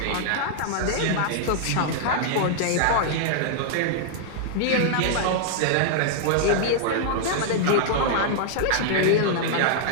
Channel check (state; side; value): different; both; correlation -0.01